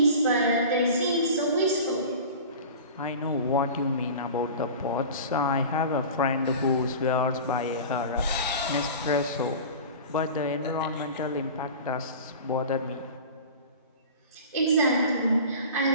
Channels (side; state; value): both; inverted; correlation -0.36